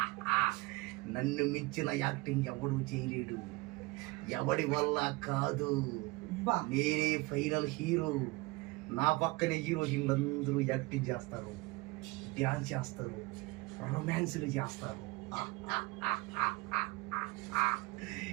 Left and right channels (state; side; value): quieter; left; 23.2 dB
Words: నన్ను మించిన యాక్టింగ్ ఎవడు చేయలేడు, ఎవడి వల్ల కాదు, బా. నేనే ఫైనల్ హీరో. నా పక్కనే హీరోయిన్లందరూ యాక్టింగ్ చేస్తారు, డ్యాన్స్ చేస్తారు, రొమాన్స్లు చేస్తారు.